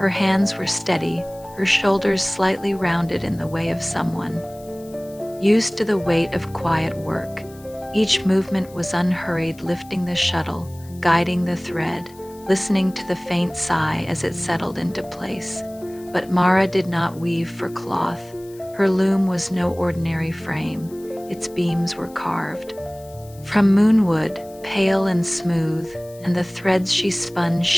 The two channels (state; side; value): noise; left; hiss, 24 dB below the sound